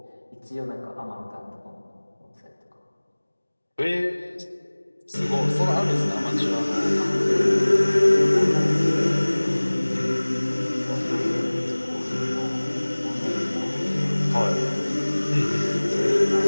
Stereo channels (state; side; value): inverted; both; correlation -1.00